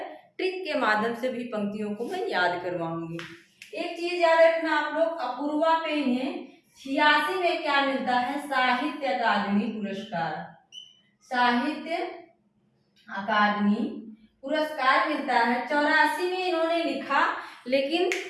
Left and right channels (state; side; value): identical; both; correlation 1.00